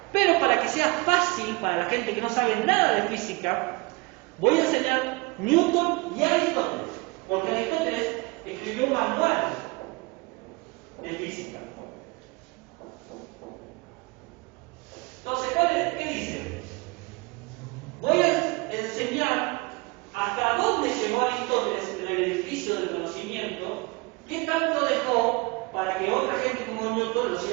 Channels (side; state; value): left; quieter; 25.7 dB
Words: Pero para que sea fácil para la gente que no sabe nada de física, voy a enseñar Newton y Aristóteles. Porque Aristóteles escribió un manual de física. Entonces, ¿qué dice? Voy a enseñar hasta dónde llegó Aristóteles en el edificio del conocimiento, qué tanto dejó para que otra gente como Newton lo